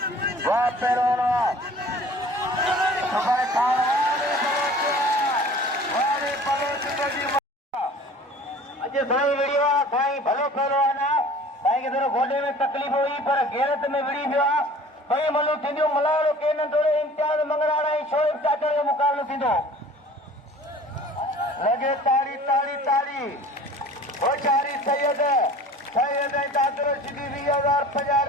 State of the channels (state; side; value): normal; both; correlation 0.46